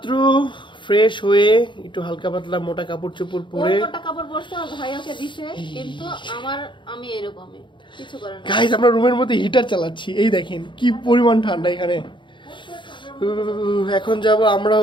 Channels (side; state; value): right; late; 0.23 ms